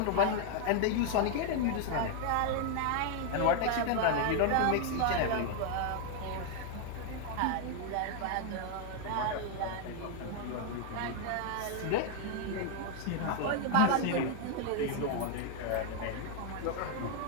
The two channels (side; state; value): both; different; correlation 0.00